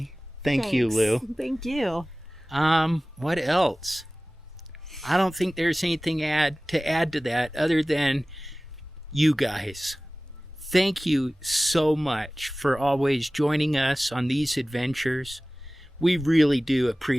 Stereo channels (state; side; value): normal; both; correlation 0.98